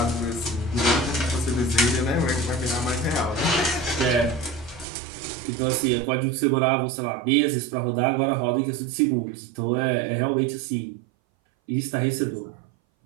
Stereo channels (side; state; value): left; drops out; at 4.9 s